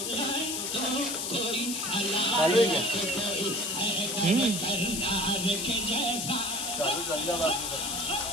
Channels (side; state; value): left; noise; hiss, 2 dB below the sound